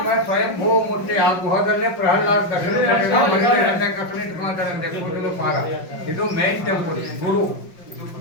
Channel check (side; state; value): right; late; 5.6 ms